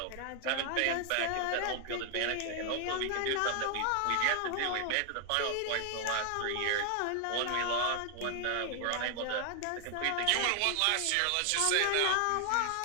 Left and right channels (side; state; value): both; different; correlation 0.00